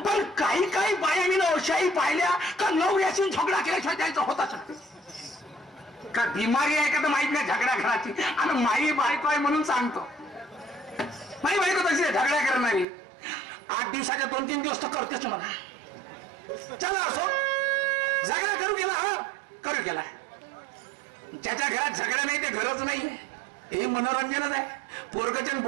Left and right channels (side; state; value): left; drops out; at 12.9 s